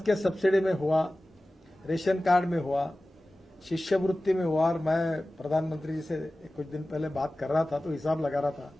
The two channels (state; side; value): normal; both; correlation 0.96